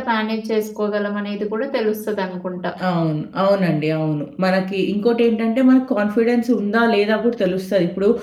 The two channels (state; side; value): identical; both; correlation 1.00